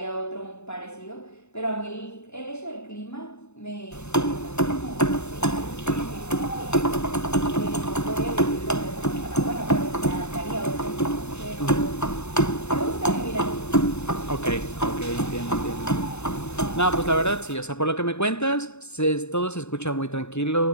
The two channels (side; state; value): right; late; 0.81 ms